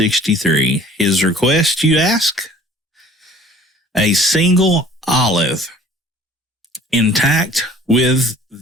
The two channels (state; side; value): normal; both; correlation 0.51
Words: His request, you ask? A single olive intact with